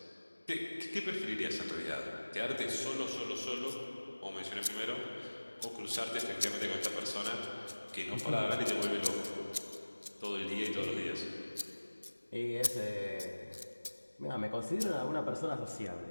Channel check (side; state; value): both; inverted; correlation -1.00